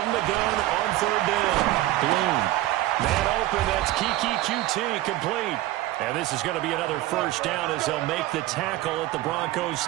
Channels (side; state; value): left; quieter; 15.9 dB